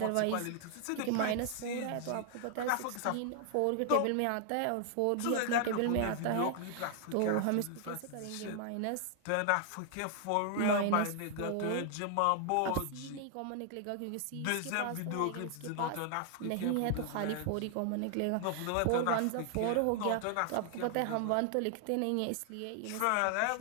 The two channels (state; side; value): different; both; correlation 0.00